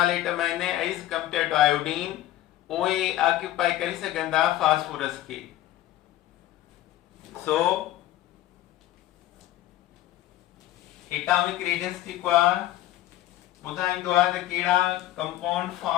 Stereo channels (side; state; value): right; quieter; 14.5 dB